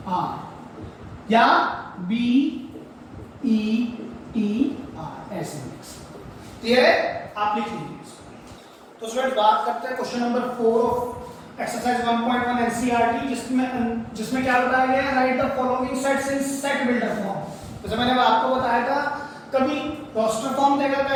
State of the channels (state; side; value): identical; both; correlation 1.00